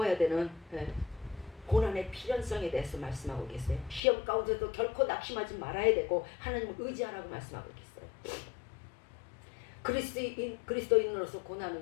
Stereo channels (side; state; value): right; drops out; at 4.0 s